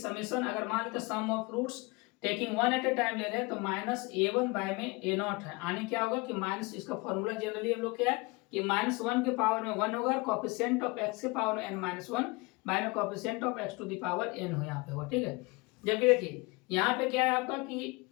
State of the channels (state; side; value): quieter; right; 25.9 dB